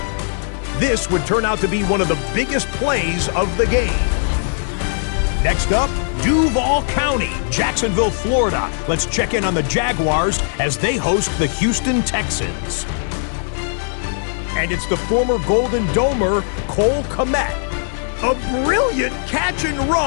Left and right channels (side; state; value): right; silent; digital silence